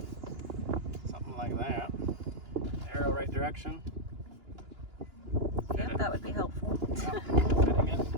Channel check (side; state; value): left; late; 2.9 ms